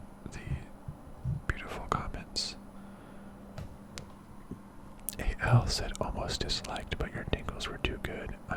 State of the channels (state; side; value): identical; both; correlation 1.00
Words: Comments. AL said almost disliked, but your Dingles were too good.